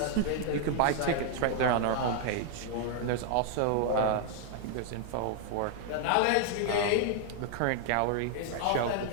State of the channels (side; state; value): both; different; correlation 0.00